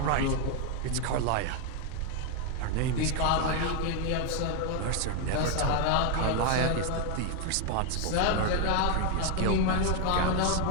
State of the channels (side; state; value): both; different; correlation 0.01